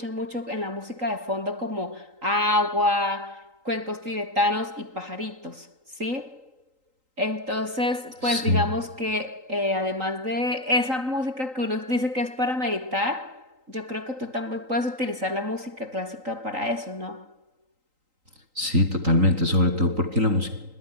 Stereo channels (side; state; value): left; late; 3.8 ms